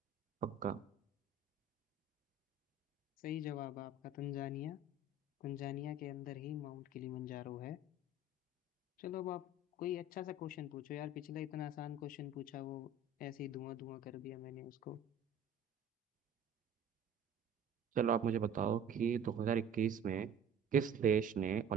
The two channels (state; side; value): quieter; left; 3.5 dB